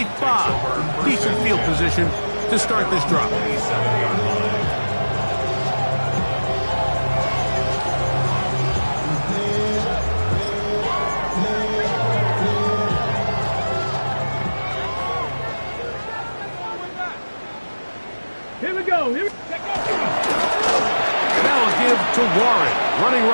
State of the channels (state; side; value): inverted; both; correlation -1.00